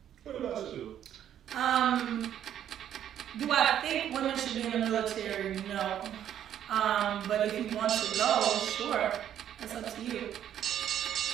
What about you? Do I think women should be in the military? No. But if you want to go, sure. That's up to you.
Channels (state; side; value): quieter; left; 10.4 dB